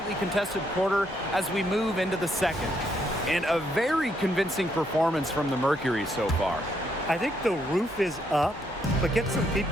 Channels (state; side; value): normal; both; correlation 0.74